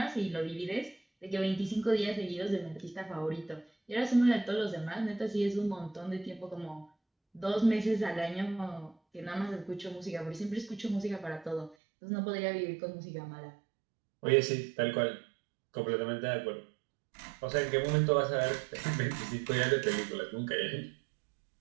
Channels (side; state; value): left; drops out; at 11.8 s